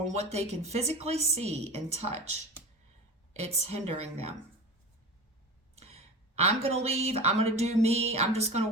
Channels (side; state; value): both; normal; correlation 0.31